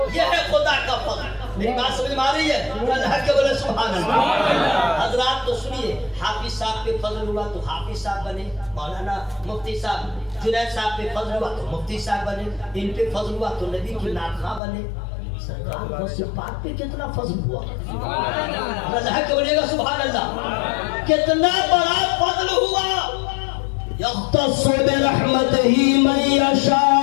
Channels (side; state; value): right; drops out; at 14.6 s